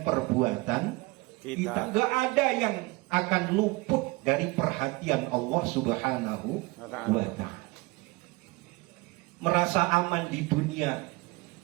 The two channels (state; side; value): quieter; left; 23.9 dB